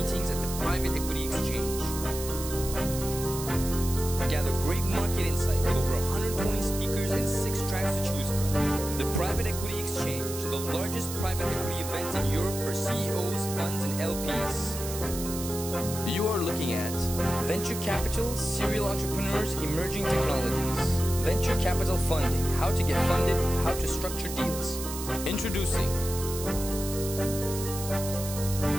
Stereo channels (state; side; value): noise; right; hiss, 8 dB below the sound